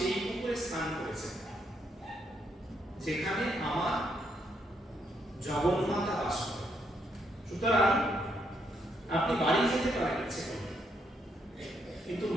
পুকুরে স্নান করেছেন যেখানে আমার জগন্মাতা বাস করে, সুতরাং আপনি বাড়ি যেতে পারেন ইচ্ছে করলে, কিন্তু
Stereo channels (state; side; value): normal; both; correlation 0.76